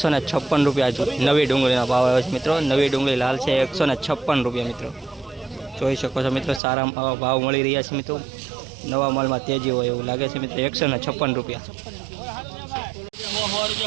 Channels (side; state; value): left; drops out; at 6.6 s